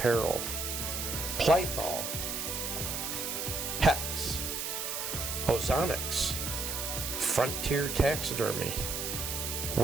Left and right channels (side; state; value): right; noise; hiss, 3 dB below the sound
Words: Plythol, Hex, Ozonics, Frontier Taxidermy,